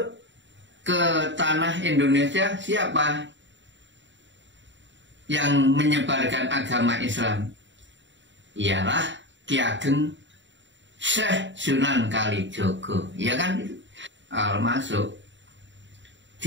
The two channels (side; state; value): left; late; 0.54 ms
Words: ke tanah Indonesia siapa? Yang menyebarkan agama Islam ialah Ki Ageng Syekh Sunan Kalijogo, ya kan? Masuk